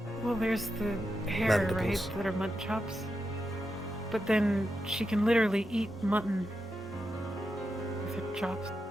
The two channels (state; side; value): normal; both; correlation 0.87